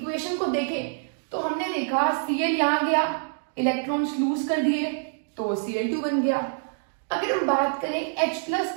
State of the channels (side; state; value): left; silent; digital silence